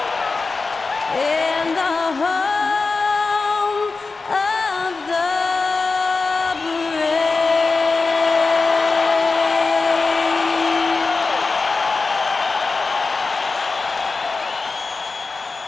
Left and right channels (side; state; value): right; quieter; 4.1 dB